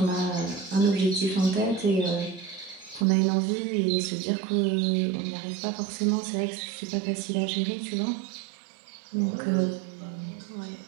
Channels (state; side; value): drops out; left; at 3.1 s